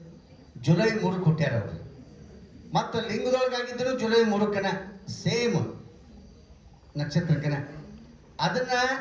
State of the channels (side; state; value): both; identical; correlation 1.00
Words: ಜುಲೈ 3 ಹುಟ್ಟ್ಯಾರ ಅವರು. ಮತ್ತು ಲಿಂಗದೊಳಗಾಗಿದ್ದರು ಜುಲೈ 3 ಸೇಮ್ ನಕ್ಷತ್ರಕ್ಕನ. ಅದನ್ನು